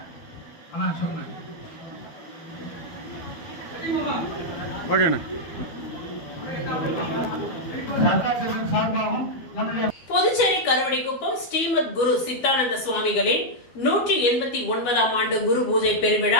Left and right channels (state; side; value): late; right; 12 ms